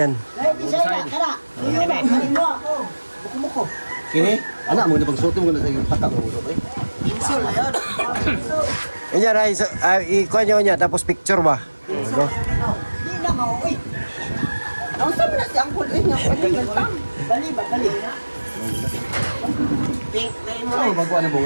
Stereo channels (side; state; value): both; inverted; correlation -1.00